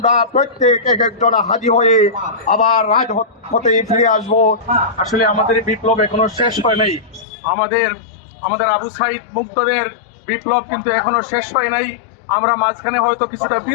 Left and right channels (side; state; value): right; drops out; at 7.2 s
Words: প্রত্যেক এক একজন হাদি হয়ে আবার রাজপথে ফিরে আসবো। আসলে আমাদের বিপ্লব এখনো শেষ হয় নাই। আমাদের আবু সাইদ মুক্তদের বিপ্লব কিন্তু এখনো শেষ হয় নাই। আমরা মাঝখানে হয়তো কিছুটা